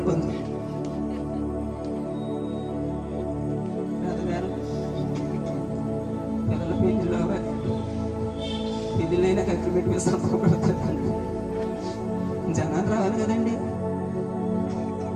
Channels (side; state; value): both; identical; correlation 1.00